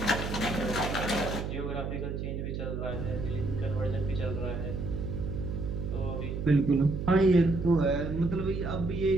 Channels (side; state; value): right; noise; hum, 4 dB below the sound